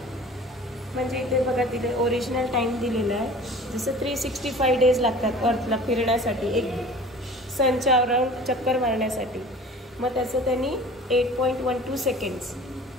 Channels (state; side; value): normal; both; correlation 0.43